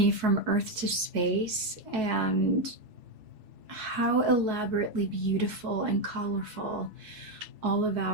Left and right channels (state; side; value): late; left; 4.7 ms